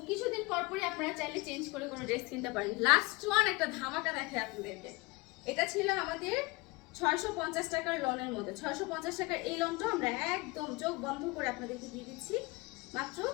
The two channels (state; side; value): quieter; right; 24.4 dB